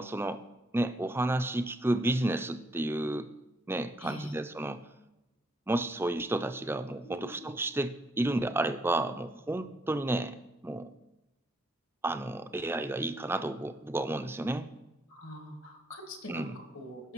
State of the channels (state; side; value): normal; both; correlation 0.72